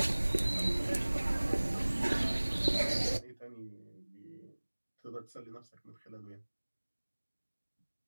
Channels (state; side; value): inverted; both; correlation -1.00